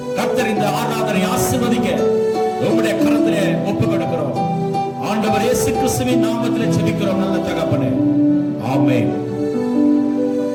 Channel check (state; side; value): identical; both; correlation 1.00